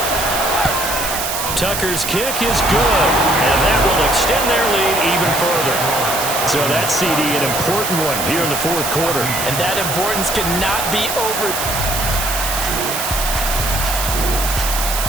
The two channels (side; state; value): right; noise; hiss, 3 dB below the sound